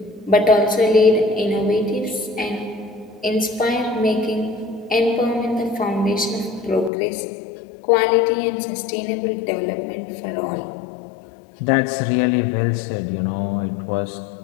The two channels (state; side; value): drops out; right; at 6.9 s